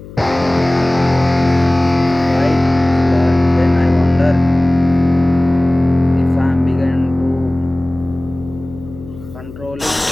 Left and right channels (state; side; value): noise; left; hum, 16 dB below the sound